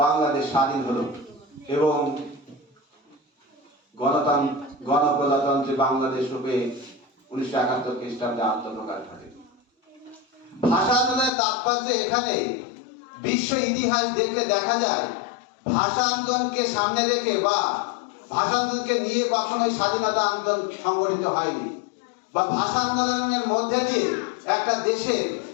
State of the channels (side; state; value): right; drops out; at 11.3 s